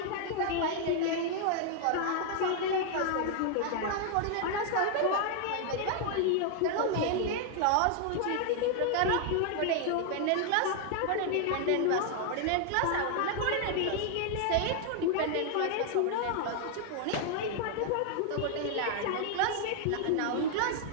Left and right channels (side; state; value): both; different; correlation 0.00